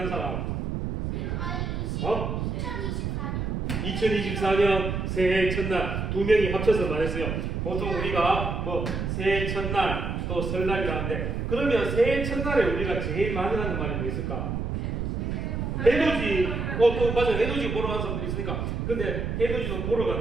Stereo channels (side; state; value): right; noise; rumble, 2 dB below the sound